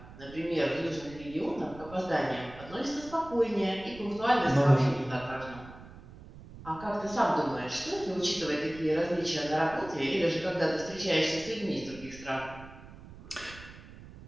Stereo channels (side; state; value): right; noise; rumble, 17 dB below the sound